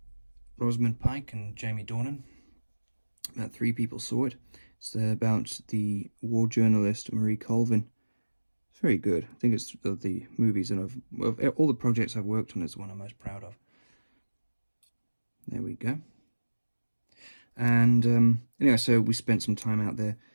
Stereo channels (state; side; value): inverted; both; correlation -1.00